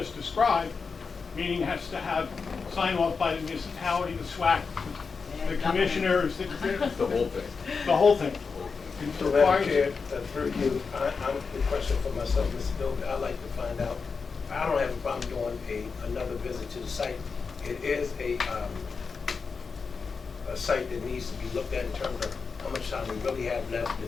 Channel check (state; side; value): quieter; right; 5.1 dB